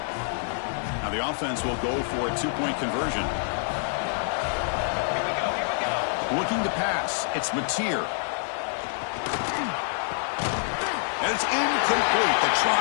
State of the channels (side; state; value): right; silent; 60 dB below the other